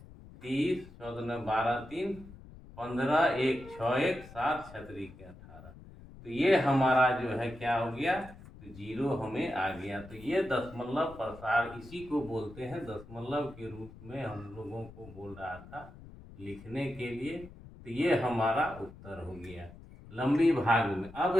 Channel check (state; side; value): noise; left; rumble, 18 dB below the sound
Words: 30, 14 12 3 15, 1 6 1 7, 36 के 18। तो ये हमारा जो है क्या हो गया, तो जीरो हमें आ गया। तो ये दशमलव प्रसार, इसी को बोलते हैं दशमलव के रूप में हम लोगों को बोल रहा था लिखने के लिए। तो ये हमारा उत्तर हो गया लंबी भाग में। अब